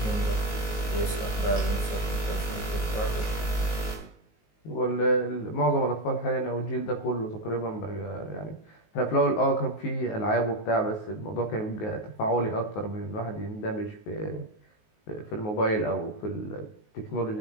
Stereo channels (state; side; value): late; right; 19 ms